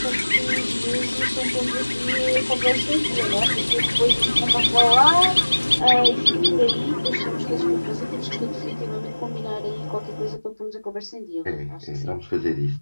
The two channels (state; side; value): inverted; both; correlation -1.00